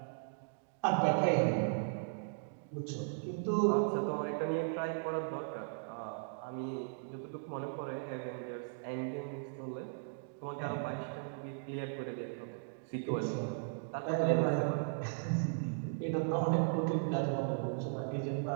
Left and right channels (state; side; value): silent; left; digital silence